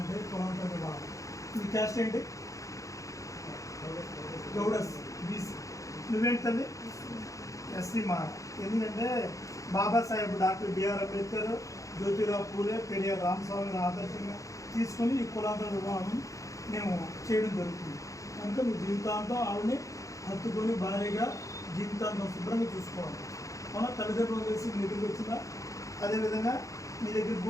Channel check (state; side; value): late; right; 0.16 ms